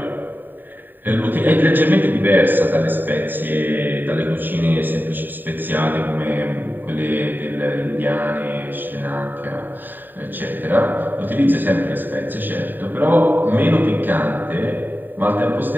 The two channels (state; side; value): late; left; 0.091 ms